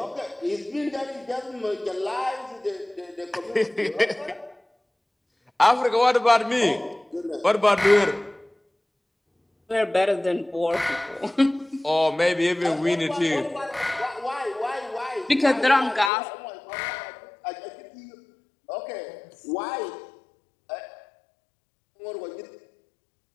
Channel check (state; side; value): drops out; right; at 16.1 s